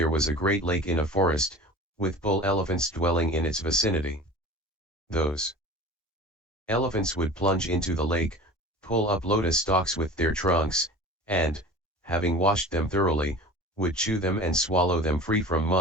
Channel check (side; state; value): both; normal; correlation 0.38